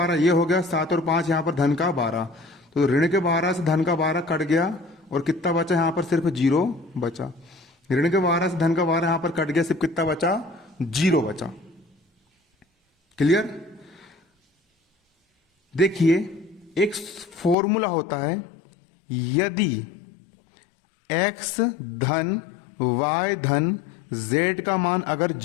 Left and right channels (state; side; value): drops out; right; at 17.6 s